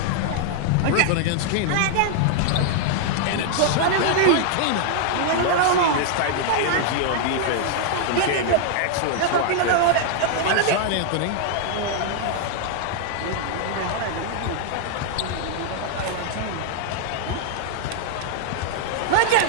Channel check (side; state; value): both; different; correlation -0.01